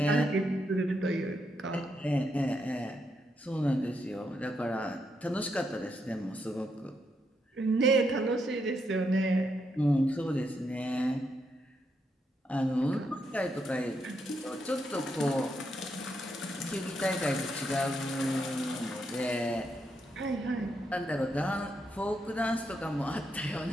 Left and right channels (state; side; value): normal; both; correlation 0.80